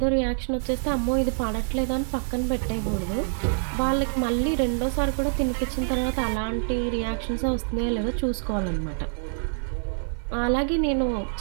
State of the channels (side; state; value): left; silent; 59 dB below the other